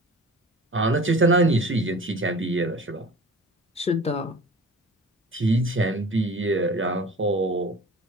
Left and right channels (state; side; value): normal; both; correlation 0.41